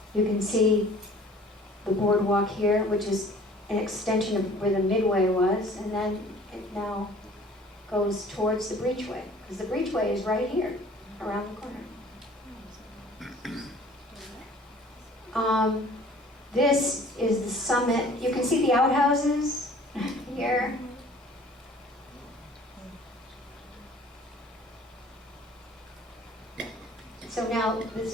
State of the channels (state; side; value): normal; both; correlation 0.51